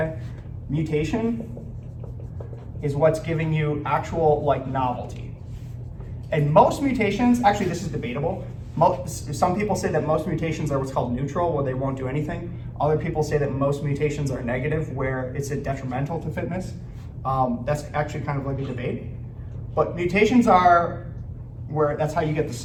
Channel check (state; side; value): identical; both; correlation 1.00